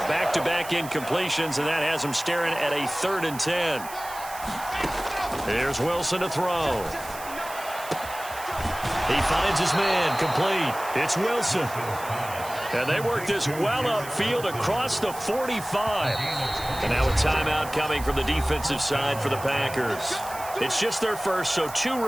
back-to-back incompletions, and that has him staring at a 3rd and 10. Here's Wilson to throw. He finds his man, complete. It's Wilson. And they work this well upfield across the 45. And now a timeout coming from the defensive side for the Packers. It's just their first, so 2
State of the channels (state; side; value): noise; right; hiss, 14 dB below the sound